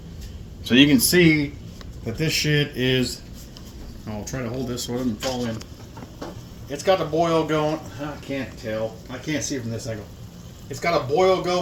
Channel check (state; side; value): identical; both; correlation 1.00